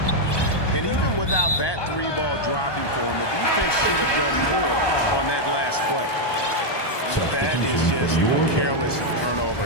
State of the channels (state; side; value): late; right; 1.2 ms